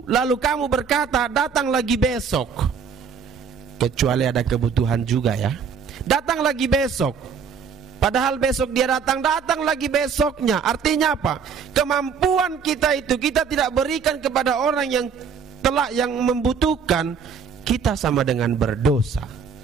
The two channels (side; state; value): left; quieter; 6.4 dB